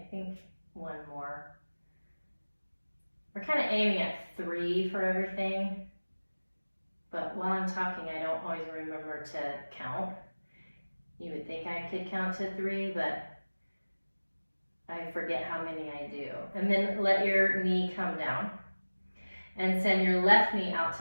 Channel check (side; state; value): both; inverted; correlation -1.00